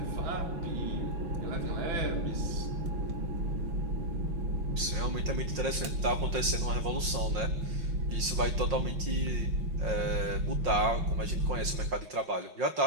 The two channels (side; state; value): left; late; 5.6 ms